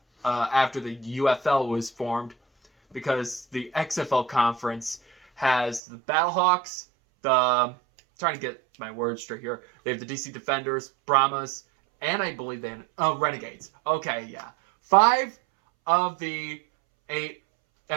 after the UFL was formed, because the XFL conference has the Battlehawks, trying to get my words straight here. They have the DC Defenders, Brahmas, and I believe they have Renegades. Okay, yeah. 5 of the 8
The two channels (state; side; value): drops out; left; at 5.8 s